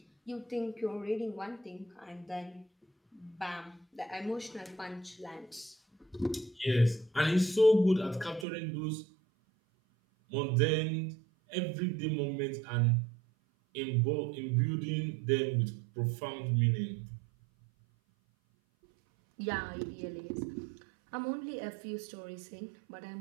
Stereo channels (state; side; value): drops out; left; at 8.5 s